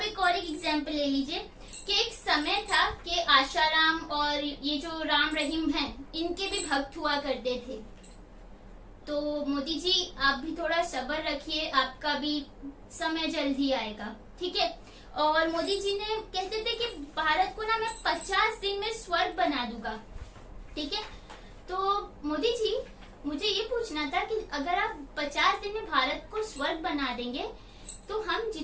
एक और एग्जाम्पल ले लीजिए कि एक समय था कि आशाराम और ये जो राम रहीम हैं, इनके भी भक्त हुआ करते थे। तो मोदी जी आप भी थोड़ा सब्र रखिए, आपका भी समय जल्द ही आएगा। ठीक है, और मोदी जी ने कहते थे कि भारत को ना मैं 50 दिन में स्वर्ग बना दूंगा। ठीक है, तो मोदी जी मुझे ये पूछना था कि अगर आप 50 दिन में भारत को स्वर्ग बना देंगे तो हम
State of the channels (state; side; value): identical; both; correlation 1.00